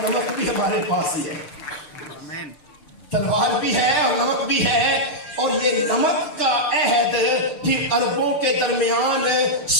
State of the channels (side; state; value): right; late; 6.7 ms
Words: भी हमारे पास ही है। आमीन। तलवार भी है और नमक भी है। और ये नमक का अहद फिर अरबों के दरमियान